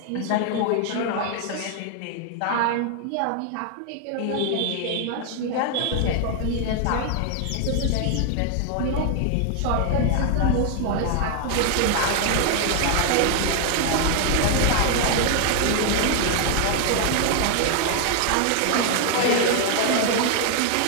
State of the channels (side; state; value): both; different; correlation 0.00